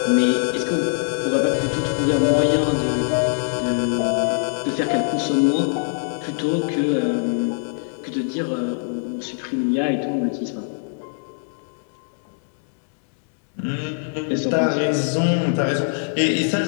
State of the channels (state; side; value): silent; right; digital silence